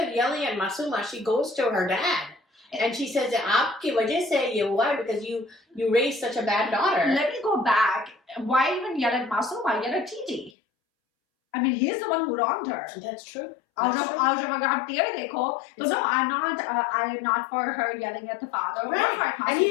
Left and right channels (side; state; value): right; drops out; at 10.5 s